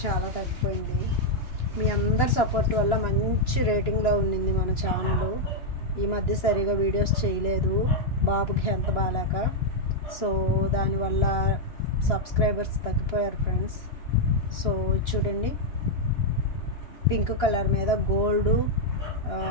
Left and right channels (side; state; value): right; late; 2.9 ms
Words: చాలా తగ్గిపోయింది. మీ అందరి సపోర్ట్ వల్ల మంచి రేటింగ్లో ఉండింది మన ఛానల్. ఈ మధ్య సరిగా వీడియోస్ చేయలేదు, బాబుకి హెల్త్ బాగాలేక. సో దానివల్ల సబ్స్క్రైబర్స్ తగ్గిపోయారు ఫ్రెండ్స్. సో చూడండి, పింక్ కలర్ మీద గోల్డ్